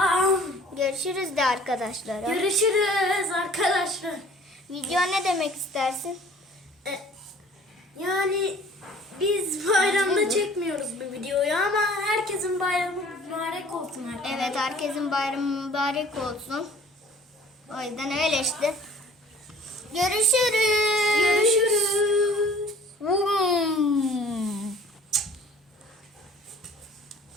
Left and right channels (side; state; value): both; normal; correlation 0.51